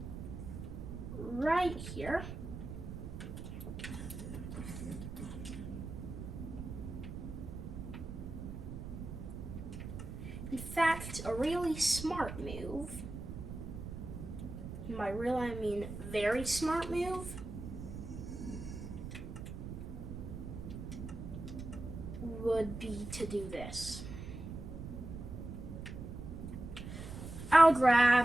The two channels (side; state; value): right; noise; rumble, 8 dB below the sound